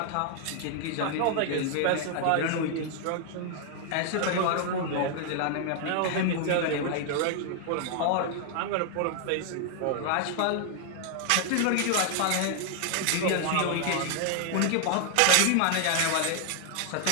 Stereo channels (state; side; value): different; both; correlation 0.00